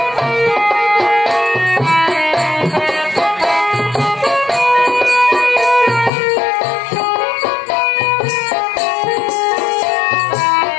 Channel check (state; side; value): drops out; right; at 6.1 s